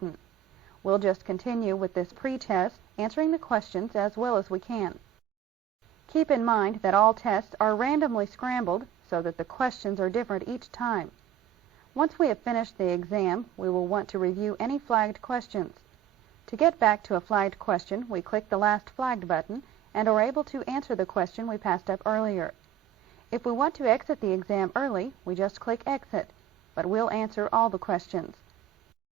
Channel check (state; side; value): quieter; left; 10.7 dB